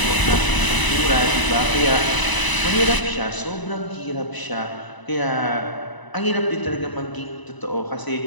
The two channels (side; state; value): right; late; 1.0 ms